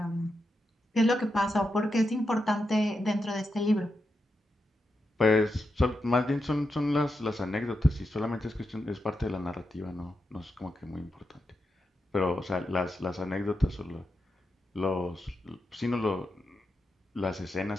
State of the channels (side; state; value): both; normal; correlation 0.87